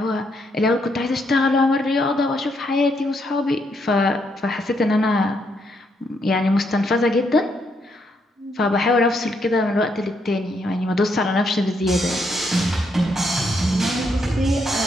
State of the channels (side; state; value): both; normal; correlation 0.76